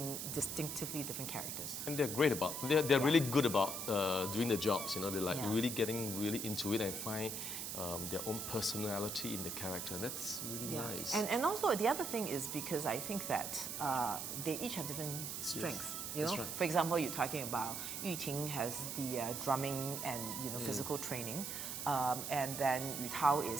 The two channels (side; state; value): right; noise; hiss, 4 dB below the sound